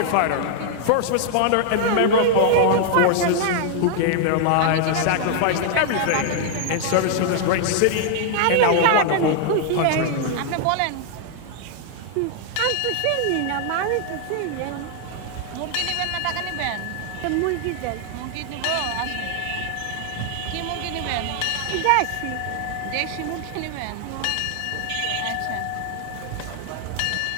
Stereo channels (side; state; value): both; different; correlation 0.00